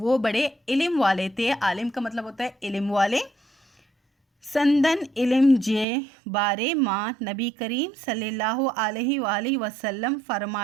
बड़े इल्म वाले थे। आलिम का मतलब होता है इल्म वाले। संदन इल्म जे बारे मां नबी करीम सल्लल्लाहु अलैहि वसल्लम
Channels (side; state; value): left; drops out; at 5.9 s